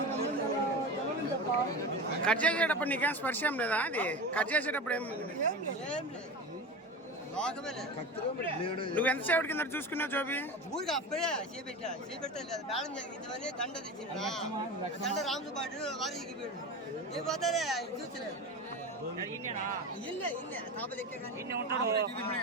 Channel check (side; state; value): both; normal; correlation 0.27